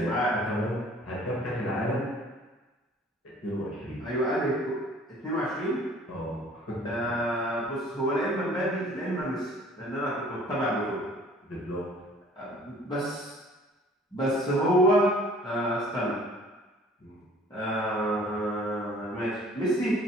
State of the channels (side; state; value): both; normal; correlation 0.53